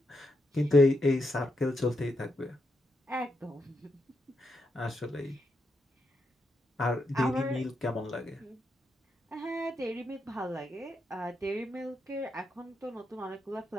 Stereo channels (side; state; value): both; normal; correlation 0.82